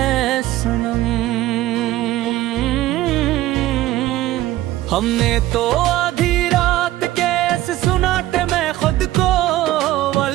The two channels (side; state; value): left; quieter; 15.5 dB